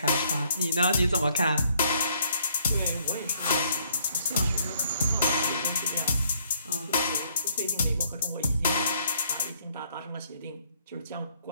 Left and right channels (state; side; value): inverted; both; correlation -0.66